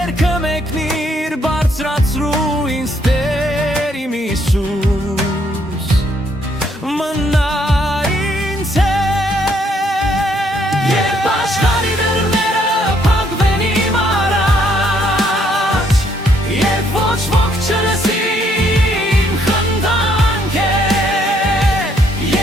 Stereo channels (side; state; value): both; normal; correlation 0.70